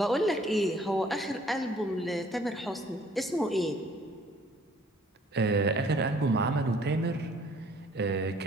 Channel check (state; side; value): normal; both; correlation 0.58